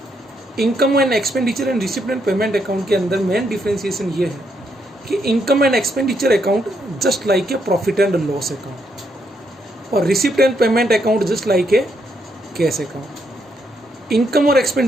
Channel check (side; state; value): both; normal; correlation 0.76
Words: Income and expenditure and receipt and payment account के अंदर मेन डिफ्रेंशिएशन ये है कि income and expenditure account just like a profit and loss account और receipt and payment account just like a cash account. Income और